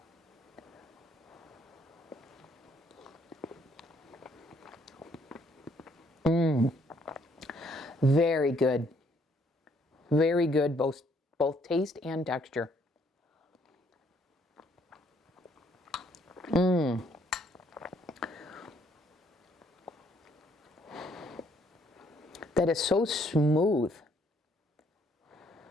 Very good. Very good, both taste and texture. That is so smooth.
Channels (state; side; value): normal; both; correlation 0.67